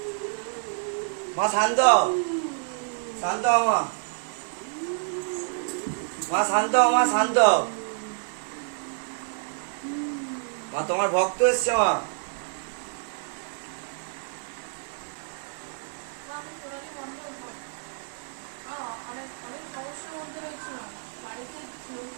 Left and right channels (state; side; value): silent; left; 59 dB below the other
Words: মা শান্ত হও, শান্ত হও মা, মা শান্ত হও, মা শান্ত হও। মা তোমার ভক্ত এসছে মা।